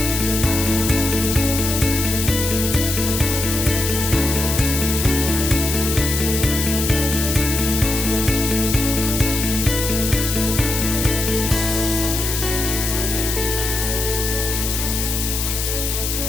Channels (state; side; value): noise; left; hiss, 2 dB below the sound